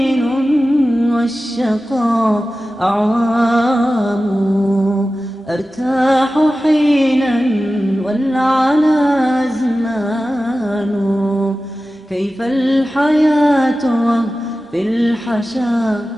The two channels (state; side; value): normal; both; correlation 0.95